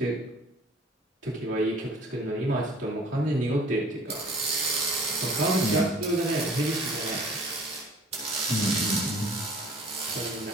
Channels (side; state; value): both; normal; correlation 0.50